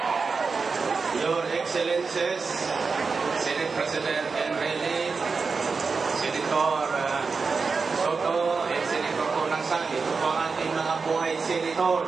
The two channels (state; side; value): quieter; left; 4.7 dB